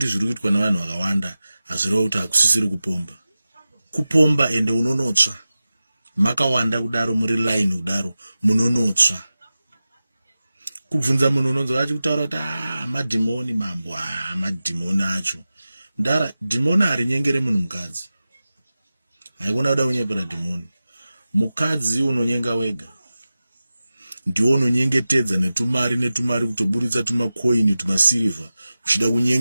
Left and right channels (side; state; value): both; inverted; correlation -0.95